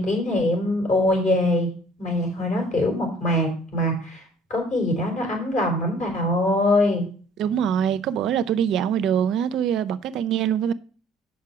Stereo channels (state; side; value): normal; both; correlation 0.55